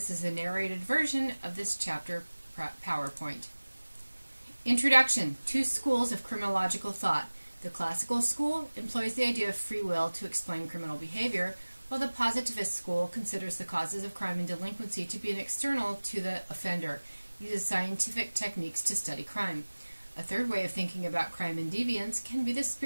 is a narrated version of this chapter PowerPoint. Introduction. Two schools of criminological thought. The classical school employs the idea of free will to explain criminal behavior, while the positivist school considers the causes of crime and delinquency to be an external to the offender, uses scientific techniques to study crime. A third way of thinking about crime and deviance can be the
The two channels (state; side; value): inverted; both; correlation -1.00